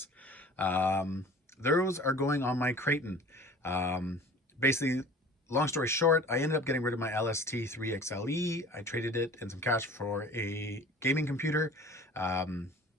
Those are going on my Kraton. Basically, long story short, I ended up getting rid of my LST3XLE. I traded it and some cash for a gaming computer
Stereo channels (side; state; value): both; normal; correlation 0.45